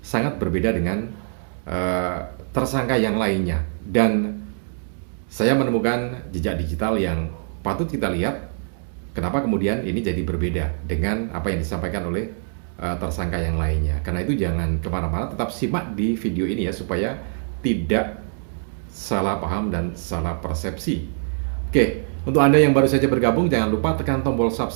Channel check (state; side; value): silent; left; digital silence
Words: sangat berbeda dengan tersangka yang lainnya. Dan saya menemukan jejak digital yang patut kita lihat kenapa kemudian ini jadi berbeda dengan apa yang disampaikan oleh tersangka yang lainnya. Karena itu jangan kemana-mana, tetap simak di video ini ya, supaya tidak salah paham dan salah persepsi. Oke, untuk Anda yang baru saja bergabung, jangan lupa tekan tombol